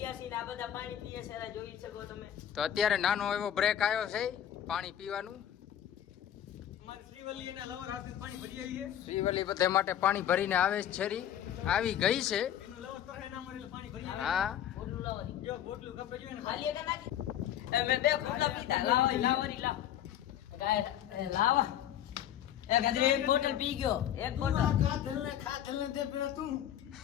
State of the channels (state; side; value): quieter; right; 10.7 dB